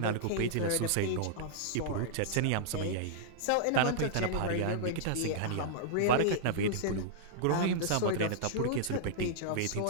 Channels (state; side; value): different; both; correlation -0.01